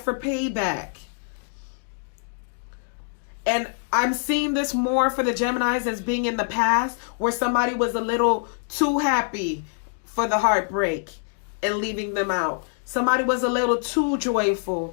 payback. And I'm seeing this more for the Geminis as being in the past, where somebody was a little too happy for the heartbreak and leaving them out. Somebody was a little too joyful.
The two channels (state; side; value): silent; right; digital silence